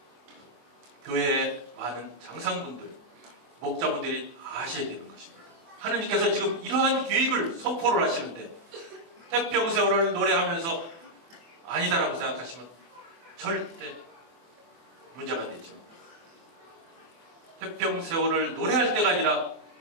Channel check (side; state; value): left; late; 24 ms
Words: 교회의 많은 장상분들, 목자분들이 아셔야 되는 것입니다. 하나님께서 지금 이러한 계획을 선포를 하시는데 태평세월을 노래하면서 아니다라고 생각하시면 절대 문제가 되죠. 태평세월을 노래할 때가 아니라